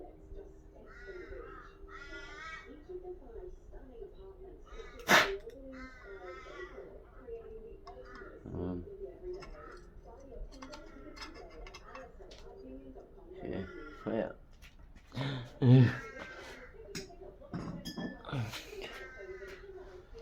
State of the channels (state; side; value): identical; both; correlation 1.00